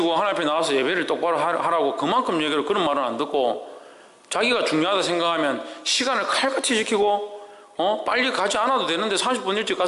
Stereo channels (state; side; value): identical; both; correlation 1.00